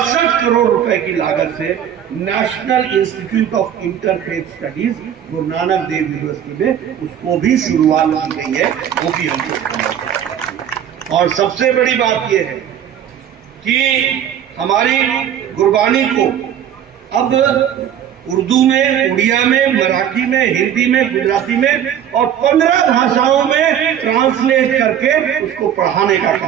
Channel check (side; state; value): left; quieter; 9.6 dB